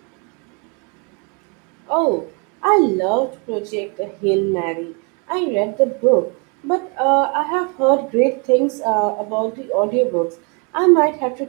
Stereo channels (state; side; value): quieter; left; 33.7 dB